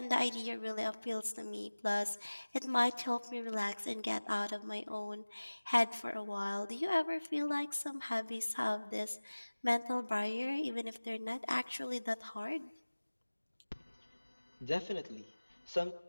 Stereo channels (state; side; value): inverted; both; correlation -1.00